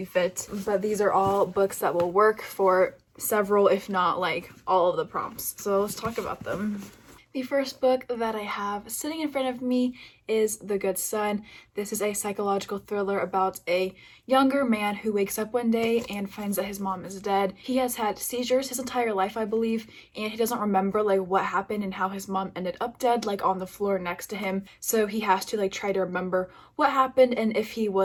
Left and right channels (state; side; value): identical; both; correlation 1.00